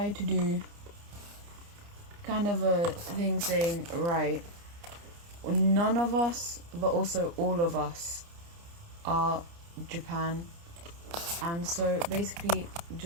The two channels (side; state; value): left; late; 29 ms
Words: to do kind of a thing saying, right, none of us, but also all of us are Japan. And so basically,